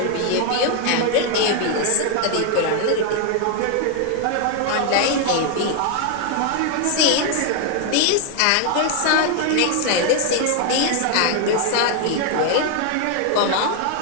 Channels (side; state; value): both; different; correlation 0.01